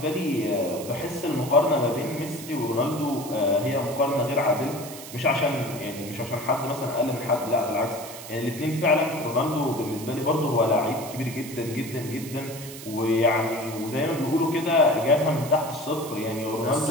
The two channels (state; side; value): noise; right; hiss, 13 dB below the sound